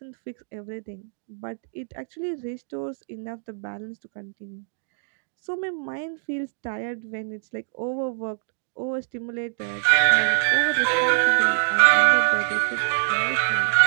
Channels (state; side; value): silent; left; digital silence